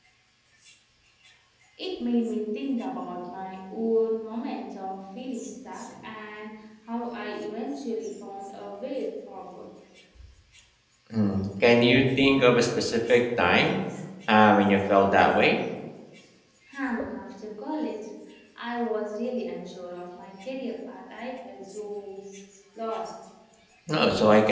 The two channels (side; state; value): both; identical; correlation 1.00